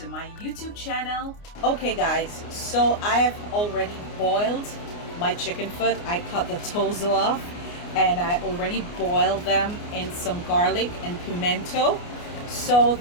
my YouTube channel. Okay, guys, so I have already boiled my chicken foot. I cut the toes off, and I already boiled them in some garlic and pimento, so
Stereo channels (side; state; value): right; late; 29 ms